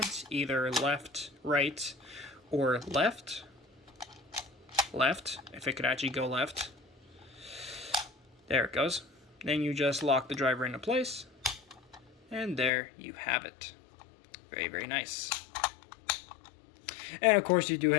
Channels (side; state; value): right; drops out; at 12.7 s